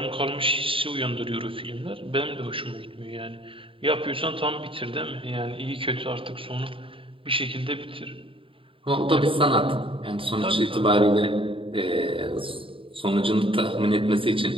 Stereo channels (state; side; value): late; left; 0.26 ms